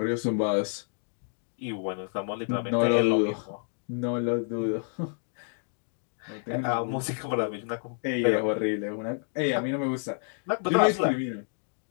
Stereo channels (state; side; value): silent; right; 59 dB below the other